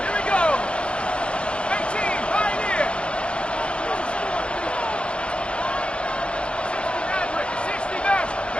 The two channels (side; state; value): right; late; 0.059 ms